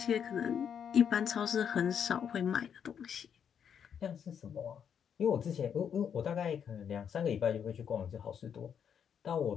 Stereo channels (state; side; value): quieter; right; 7.9 dB